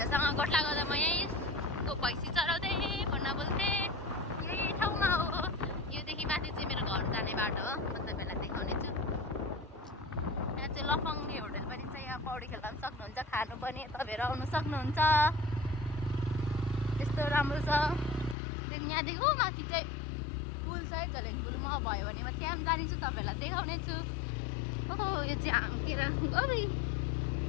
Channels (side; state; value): right; drops out; at 18.4 s